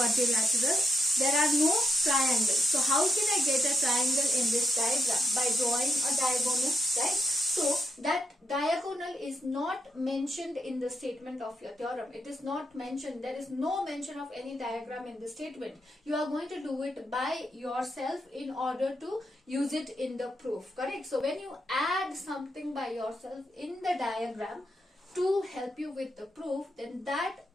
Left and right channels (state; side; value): normal; both; correlation 0.82